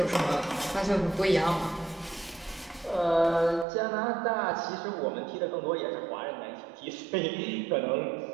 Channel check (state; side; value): drops out; left; at 3.7 s